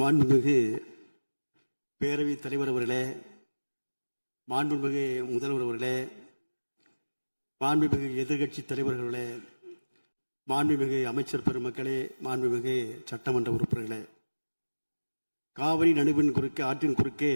பேரவைத் தலைவர் அவர்களே, மாண்புமிகு முதல்வர் அவர்களே, மாண்புமிகு எதிர்கட்சி தலைவர்களே, மாண்புமிகு அமைச்சர் பெருமக்களே, மாண்புமிகு சட்டமன்ற உறுப்பினர்களே, காவிரி நடுவின் குறுக்கே ஆற்றின் குறுக்கே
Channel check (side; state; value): both; inverted; correlation -1.00